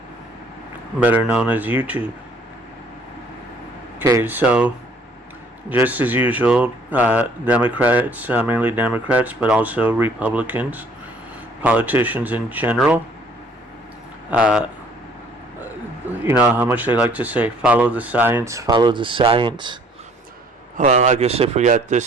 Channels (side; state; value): both; normal; correlation 0.58